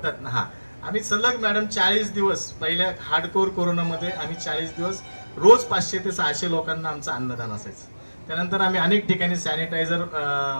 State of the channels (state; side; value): inverted; both; correlation -1.00